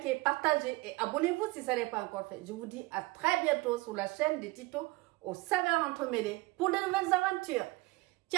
partagez et abonnez-vous si ça n'est pas encore fait. Je vous dis à très bientôt sur la chaîne de Tito aux saveurs entremêlées pour de nouvelles aventures.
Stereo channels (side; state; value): left; quieter; 22.0 dB